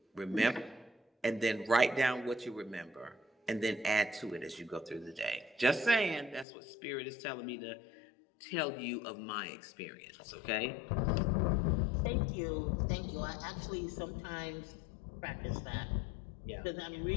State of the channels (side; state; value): right; drops out; at 6.5 s